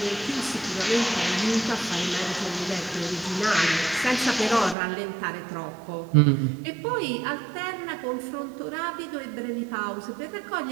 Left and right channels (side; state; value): left; drops out; at 4.8 s